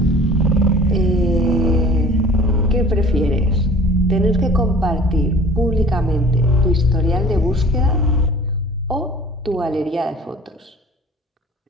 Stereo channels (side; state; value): both; normal; correlation 0.46